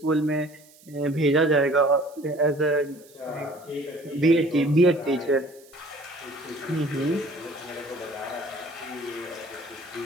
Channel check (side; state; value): right; noise; hiss, 25 dB below the sound